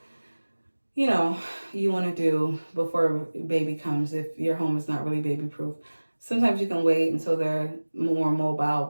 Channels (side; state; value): both; inverted; correlation -1.00